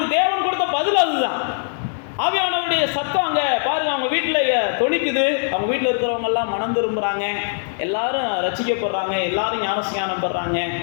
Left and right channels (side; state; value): right; silent; 58 dB below the other